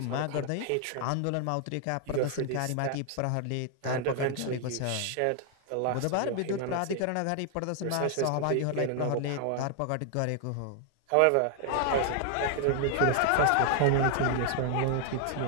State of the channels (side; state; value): both; different; correlation 0.00